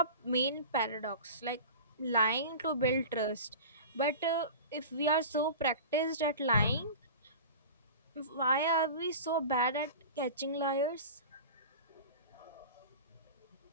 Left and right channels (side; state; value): both; inverted; correlation -0.34